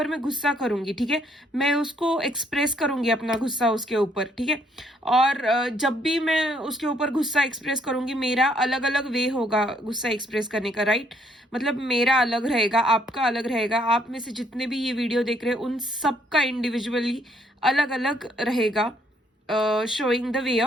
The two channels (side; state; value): both; normal; correlation 0.68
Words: मैं गुस्सा करूंगी. ठीक है, मैं उसको एक्सप्रेस करूंगी अपना गुस्सा उसके ऊपर. ठीक है, और जब भी मैं उसके ऊपर गुस्सा एक्सप्रेस करूंगी, मेरा अलग अलग वे होगा गुस्सा एक्सप्रेस करने का. राइट, मतलब मेरा अलग रहेगा, आपका अलग रहेगा, आप में से जितने भी ये वीडियो देख रहे हैं उन सबका इंडिविजुअली अलग अलग रहेगा showing the way